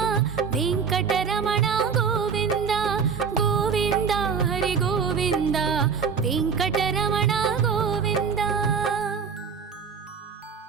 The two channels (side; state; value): left; quieter; 6.2 dB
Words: ವೆಂಕಟರಮಣ ಗೋವಿಂದ ಗೋವಿಂದ ಹರಿ ಗೋವಿಂದ ವೆಂಕಟರಮಣ ಗೋವಿಂದ.